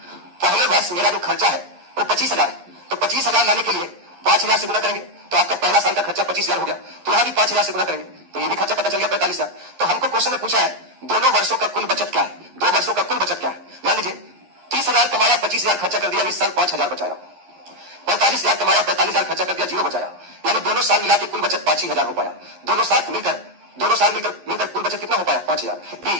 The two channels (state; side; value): late; left; 11 ms